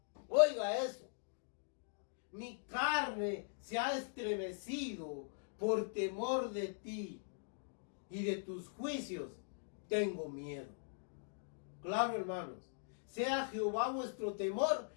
Oiga eso. Mi carne se ha estremecido por temor de ti, y de tus juicios tengo miedo. Claro, hermanos, sea Jehová vuestro temor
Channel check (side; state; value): right; silent; digital silence